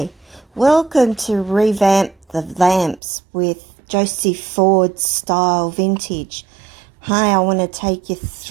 welcome to Revamp the Lamps with Josie FordStyle Vintage. Hi, I want to take you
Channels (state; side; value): drops out; left; at 3.0 s